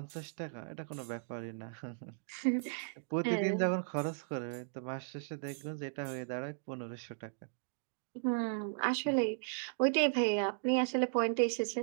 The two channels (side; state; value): left; silent; digital silence